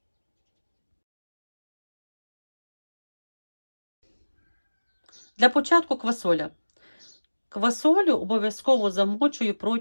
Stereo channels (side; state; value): both; inverted; correlation -1.00